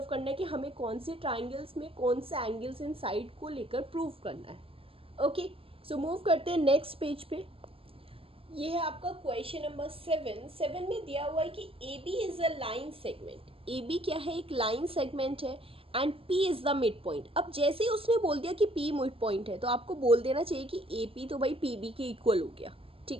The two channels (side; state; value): left; late; 0.27 ms